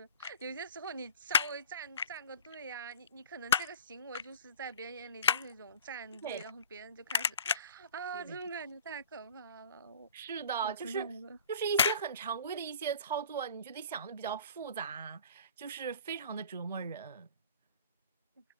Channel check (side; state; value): both; inverted; correlation -0.44